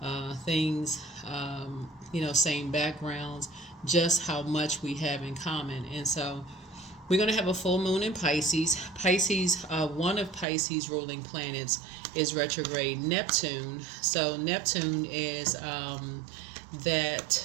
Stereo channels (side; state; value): left; drops out; at 10.5 s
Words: things, same backgrounds, just how much we have in common. And so we're going to have a full moon in Pisces. One of Pisces ruling planets is retrograde Neptune. So Neptune is